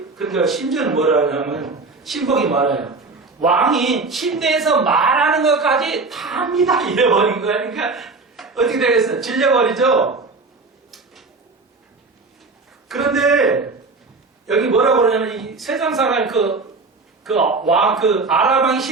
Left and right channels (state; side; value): quieter; left; 3.9 dB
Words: 그러니까 심지어는 뭐라 하냐면 신복이 말해요. 왕이 침대에서 말하는 것까지 다 합니다. 이래버린 거야. 그러니까 어떻게 되겠어? 질려버리죠? 그런데 여기 뭐라고 그러냐면 이 세상 사람 아랍 왕이